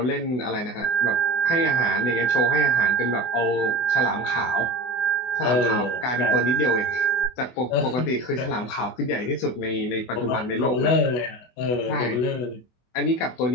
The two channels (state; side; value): late; right; 24 ms